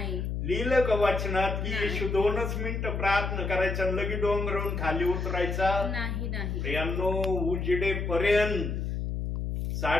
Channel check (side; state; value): left; noise; hum, 2 dB below the sound